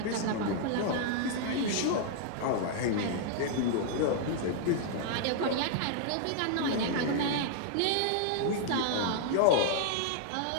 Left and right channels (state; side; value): different; both; correlation -0.01